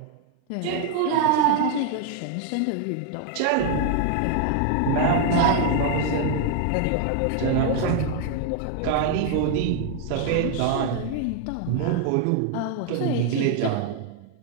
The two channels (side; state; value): both; different; correlation 0.00